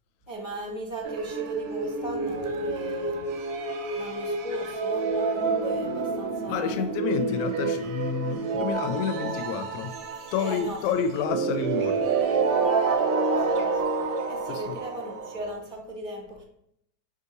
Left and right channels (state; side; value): late; right; 9.2 ms